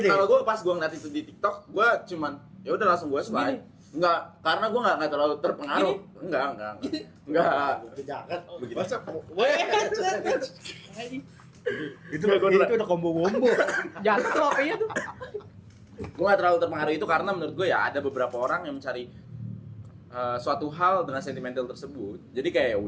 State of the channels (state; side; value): identical; both; correlation 1.00